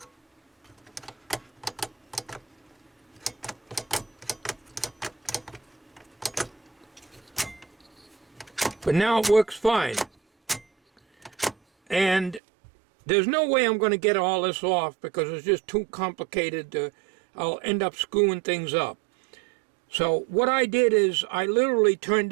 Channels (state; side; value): drops out; left; at 12.4 s